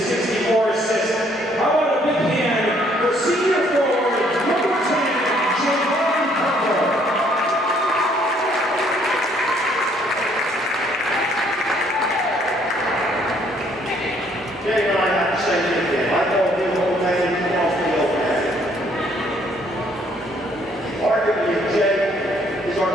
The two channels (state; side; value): normal; both; correlation 0.65